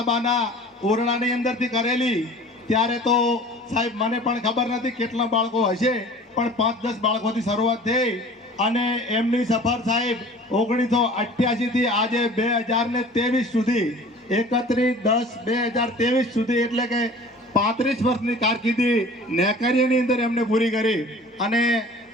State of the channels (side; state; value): both; normal; correlation 0.45